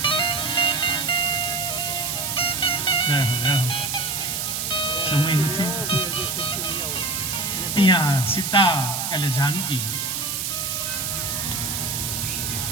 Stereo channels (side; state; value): right; noise; hiss, 2 dB below the sound